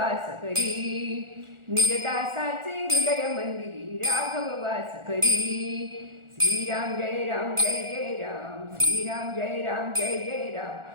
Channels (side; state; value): left; late; 1.4 ms